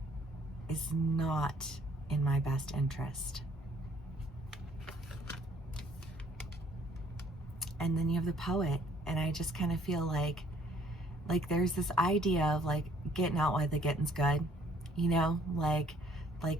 is not in my best interest. And then you have the Poet, and I just kind of feel like there's this idea of like getting out while the getting's good, you know, like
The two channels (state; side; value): normal; both; correlation 0.61